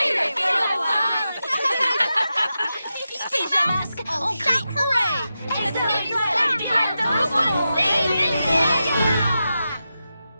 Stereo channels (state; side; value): inverted; both; correlation -0.90